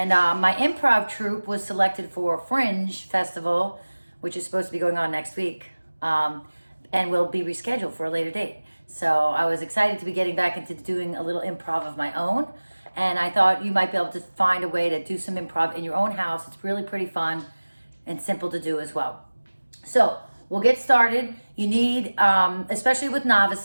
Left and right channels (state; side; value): inverted; both; correlation -1.00